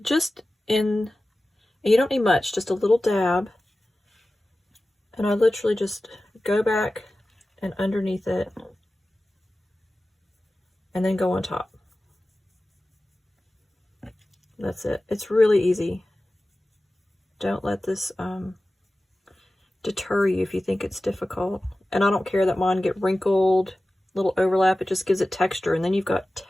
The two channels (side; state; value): both; normal; correlation 0.96